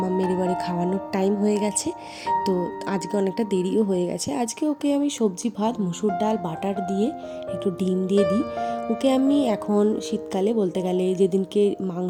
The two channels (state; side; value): identical; both; correlation 1.00